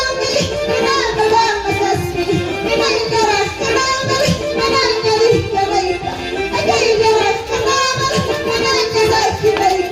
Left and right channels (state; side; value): identical; both; correlation 1.00